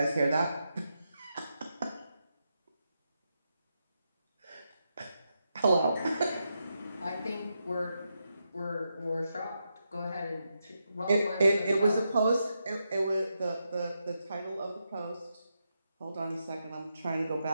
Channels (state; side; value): inverted; both; correlation -0.85